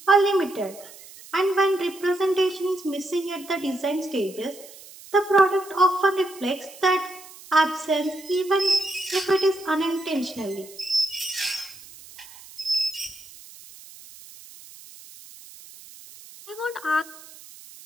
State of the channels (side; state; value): right; noise; hiss, 19 dB below the sound